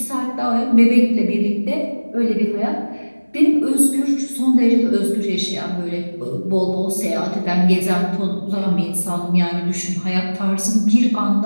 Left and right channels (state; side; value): inverted; both; correlation -1.00